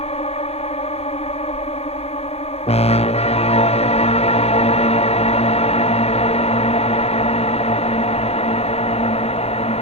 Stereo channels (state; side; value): late; right; 0.30 ms